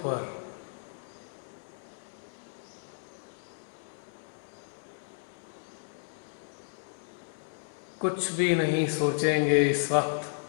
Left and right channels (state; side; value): silent; right; 56 dB below the other